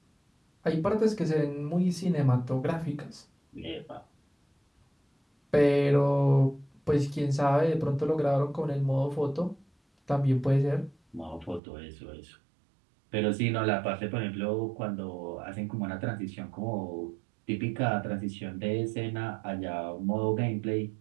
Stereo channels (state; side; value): drops out; left; at 11.6 s